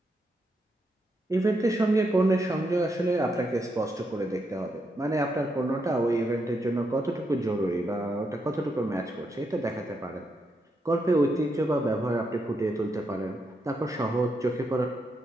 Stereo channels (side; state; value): both; normal; correlation 0.81